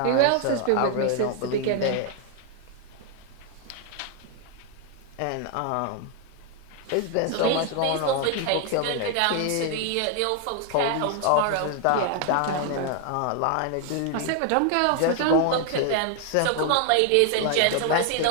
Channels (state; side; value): different; both; correlation 0.00